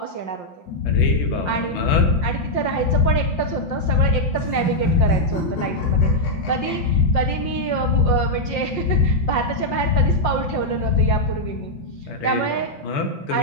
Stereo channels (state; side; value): late; right; 5.7 ms